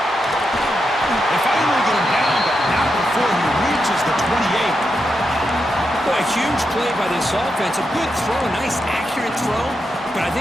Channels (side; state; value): both; normal; correlation 0.85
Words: They finally get him down, but not before he reaches the 28. Well, a huge play by this offense. A good throw, a nice accurate throw, but I